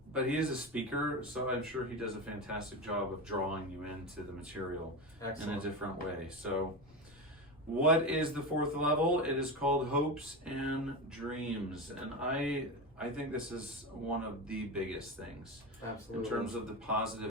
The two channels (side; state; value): both; normal; correlation 0.20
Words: he is a speaker, so I'm sure he does a fantastic job of drawing you into the material in a different way. So, what is the fourth level? It is called hopes and dreams, and I think this is one of the biggest things. Absolutely. In terms of the